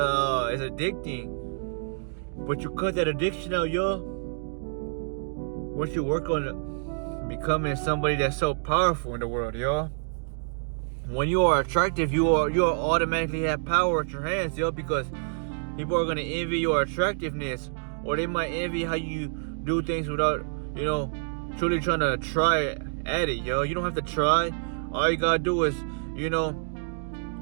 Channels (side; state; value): left; silent; digital silence